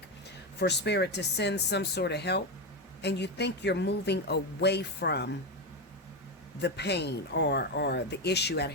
for Spirit to send some sort of help, and you think you're moving away from the pain or the issue at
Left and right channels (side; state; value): both; normal; correlation 0.12